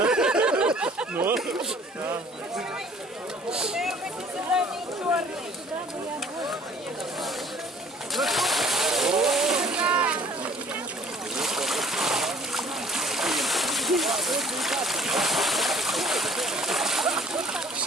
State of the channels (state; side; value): normal; both; correlation 0.54